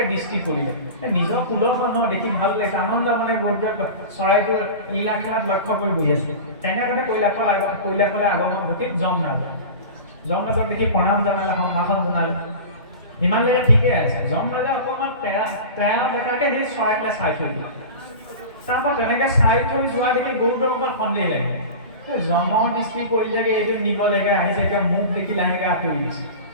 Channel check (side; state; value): both; inverted; correlation -0.32